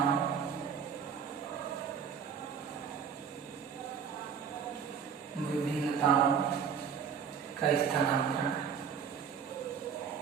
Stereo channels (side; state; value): left; quieter; 7.0 dB